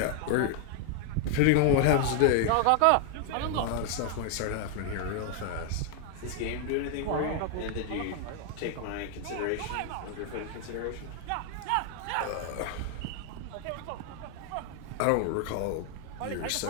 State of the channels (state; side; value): different; both; correlation 0.00